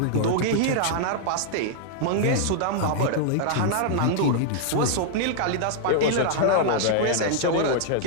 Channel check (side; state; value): both; different; correlation -0.01